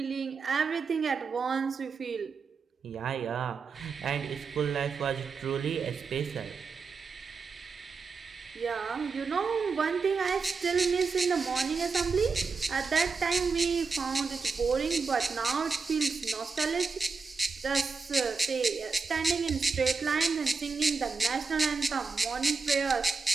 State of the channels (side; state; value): left; quieter; 4.7 dB